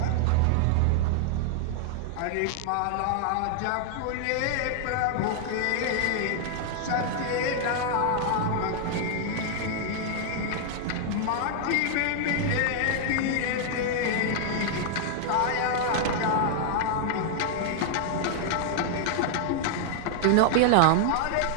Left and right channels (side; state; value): both; different; correlation -0.01